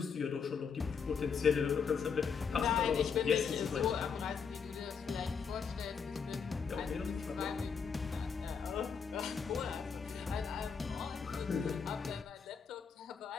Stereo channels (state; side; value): quieter; right; 6.2 dB